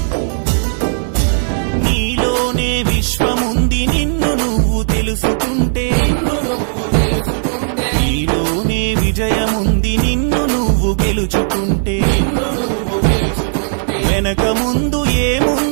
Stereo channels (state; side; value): silent; left; digital silence